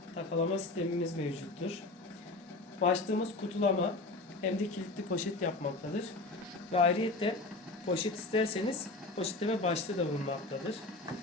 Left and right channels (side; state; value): right; quieter; 3.1 dB